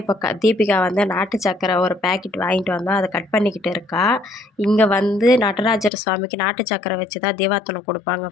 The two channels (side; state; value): right; drops out; at 5.9 s